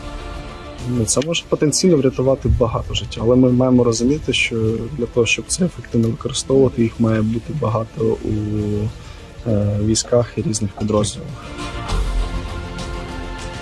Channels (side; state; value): both; identical; correlation 1.00